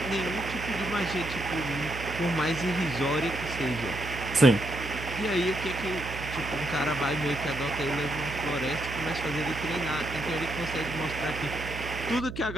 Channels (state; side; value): noise; right; hum, 9 dB below the sound